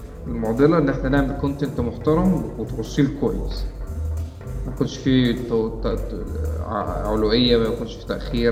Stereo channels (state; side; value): identical; both; correlation 1.00